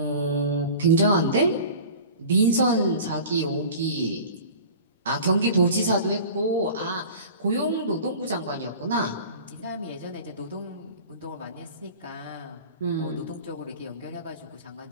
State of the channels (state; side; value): inverted; both; correlation -0.40